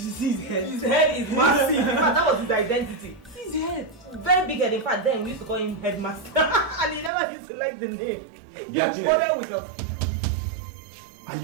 see his head? His head is massive. In fact, that was his identity. See his head. Very big head. In fact, then we used to call him Headmaster. And he never used to like the name. He followed with us. Are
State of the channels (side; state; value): left; drops out; at 7.1 s